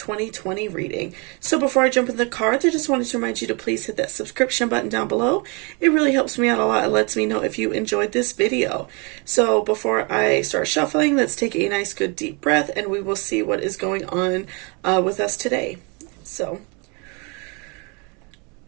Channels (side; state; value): left; quieter; 31.9 dB